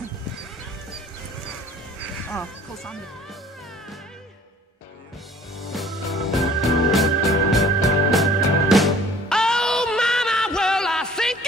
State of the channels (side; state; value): both; normal; correlation 0.52